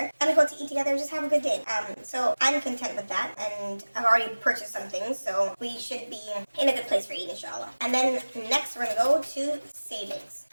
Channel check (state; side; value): inverted; both; correlation -1.00